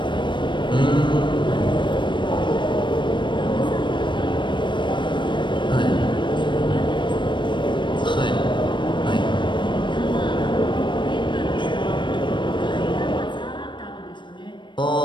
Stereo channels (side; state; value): right; late; 0.23 ms